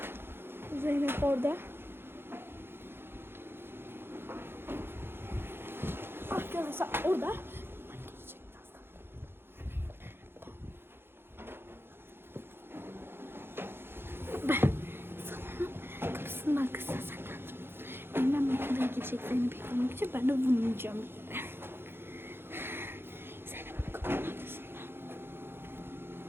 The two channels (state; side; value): late; left; 0.11 ms